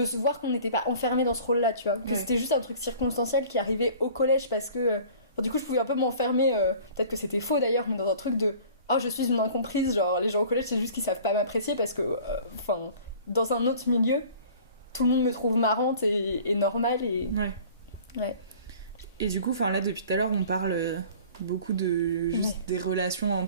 se voir qu'on n'était pas enfermé dans ce rôle là, tu vois, que c'était juste un truc circonstanciel qui arrivait au collège parce que du coup je pouvais un peu m'enfermer, peut-être que c'était faux d'ailleurs, mais dans un truc de oh je suis une incomprise, genre les gens au collège c'est juste qu'ils savent pas m'apprécier parce que dans un autre milieu tout le monde me trouve marrante et normale et ouais. Et du coup, là, depuis tout à l'heure, on parle beaucoup de juste des relations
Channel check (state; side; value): inverted; both; correlation -0.47